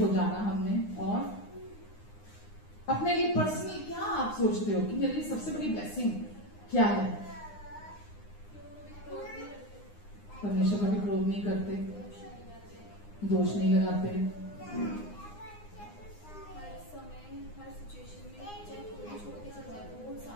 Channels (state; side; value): late; right; 9.7 ms